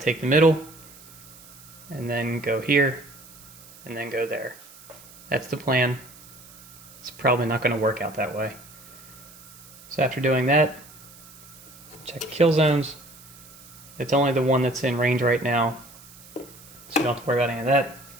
the middle, and then go here, and then go there. That's the plan. It's probably not going to work out that way. So after doing that, check kill zones. It's only the one that's in range right now, so you don't have to worry about any of that.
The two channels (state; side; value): noise; right; hiss, 21 dB below the sound